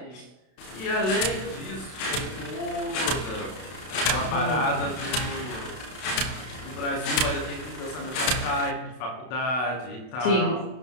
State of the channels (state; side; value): late; right; 32 ms